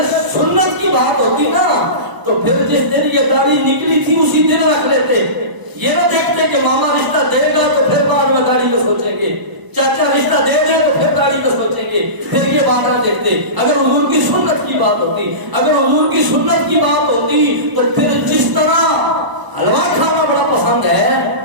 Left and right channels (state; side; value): late; left; 1.0 ms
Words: سنت کی بات ہوتی نا تو پھر جس دن یہ داڑھی نکلی تھی اسی دن رکھ لیتے. یہ نہ دیکھتے کہ ماما رشتہ دے گا تو پھر بعد میں داڑھی کا سوچیں گے، چاچا رشتہ دے دے تو پھر داڑھی کا سوچیں گے، پھر یہ بات نہ دیکھتے. اگر حضور کی سنت کی بات ہوتی، اگر حضور کی سنت کی بات ہوتی تو پھر جس طرح حلوہ کھانا بڑا پسند ہے،